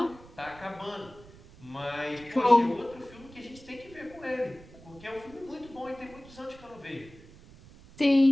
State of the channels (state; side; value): noise; right; rumble, 21 dB below the sound